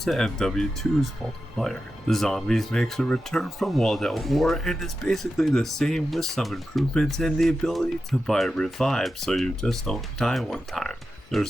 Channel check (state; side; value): noise; left; hum, 27 dB below the sound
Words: MW2's multiplayer. The Zombies makes a return from World at War and is basically the same with some improvements and the ability to buy revive so you just don't die one time.